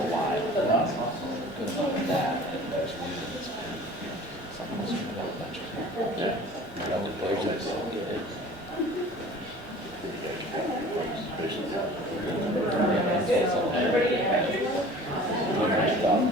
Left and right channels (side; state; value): both; normal; correlation 0.44